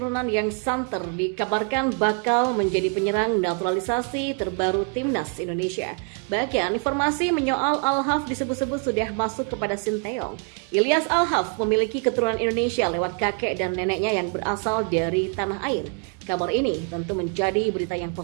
yang santer dikabarkan bakal menjadi penyerang naturalisasi terbaru timnas Indonesia. Bahkan informasi menyoal Alhaf disebut-sebut sudah masuk kepada Sinteyong. Ilyas Alhaf memiliki keturunan Indonesia lewat kakek dan neneknya yang berasal dari tanah air. Kabar ini tentu menjadi berita yang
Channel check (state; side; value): quieter; left; 35.9 dB